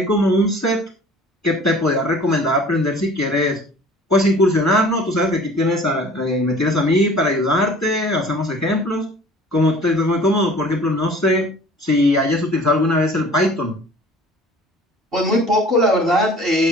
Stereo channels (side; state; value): both; normal; correlation 0.48